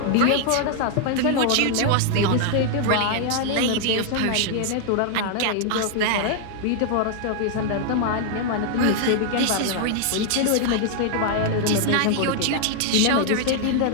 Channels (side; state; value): both; different; correlation 0.00